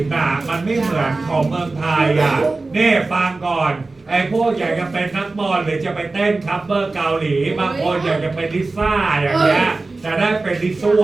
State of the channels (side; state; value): left; quieter; 3.5 dB